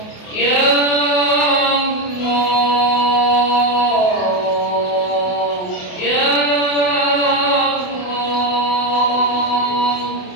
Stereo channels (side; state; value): right; late; 28 ms